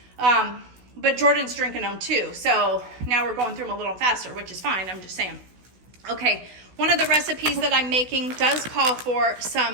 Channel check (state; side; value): late; left; 16 ms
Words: But Jordan's drinking them too. So now we're going through them a little faster, which is fine. I'm just saying. Okay, one of the recipes that I'm making does call for